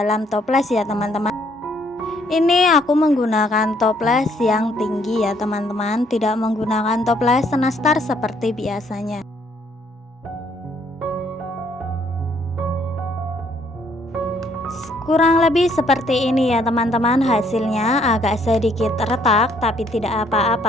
toples ya teman-teman. Ini aku menggunakan toples yang tinggi ya teman-teman, tidak menggunakan toples nastar seperti biasanya. Kurang lebih seperti ini ya teman-teman hasilnya, agak sedikit retak tapi tidak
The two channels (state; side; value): normal; both; correlation 0.66